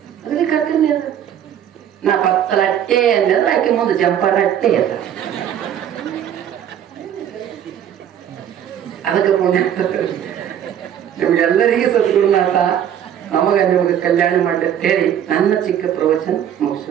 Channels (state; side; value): quieter; left; 9.8 dB